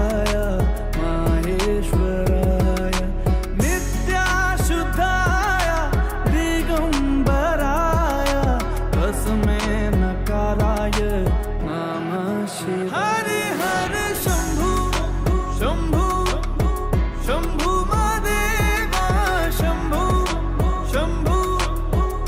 माहेश्वराय नित्याशुद्धाय दिगंबराय तस्मै नकाराय नमः शिवाय हरि हर शंभू शंभू शंभू महादेवा शंभू शंभू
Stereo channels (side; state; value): both; identical; correlation 1.00